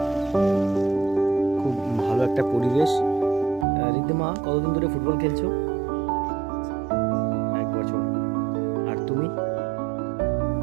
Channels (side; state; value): left; drops out; at 3.7 s